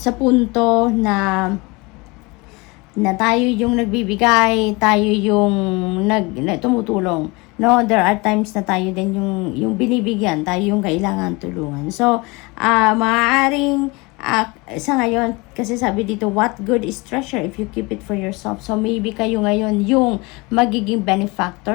punto na tayo yung nagbibigay, tayo yung tumutulong. No, there are times na tayo din yung binibigyan, tayo yung kailangan tulungan. So, maaaring sa ngayon, kasi sabi dito, what good is treasure if you keep it for yourself? So, maybe kayo ngayon yung magiging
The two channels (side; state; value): right; quieter; 25.7 dB